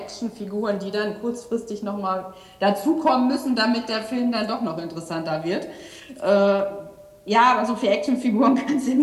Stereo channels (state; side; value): identical; both; correlation 1.00